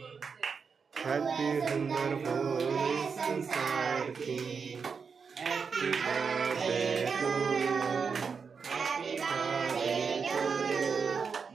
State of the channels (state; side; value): quieter; left; 5.7 dB